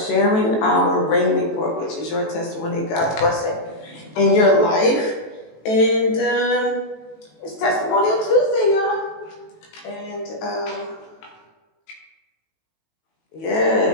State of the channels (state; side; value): late; right; 18 ms